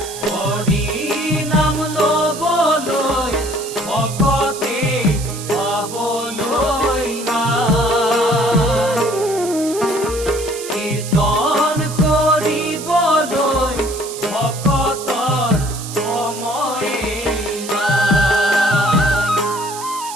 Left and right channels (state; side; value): noise; right; hiss, 11 dB below the sound